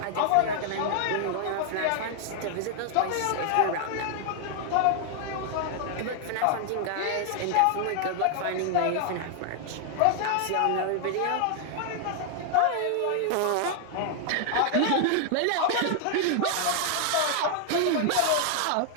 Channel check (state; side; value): different; both; correlation 0.00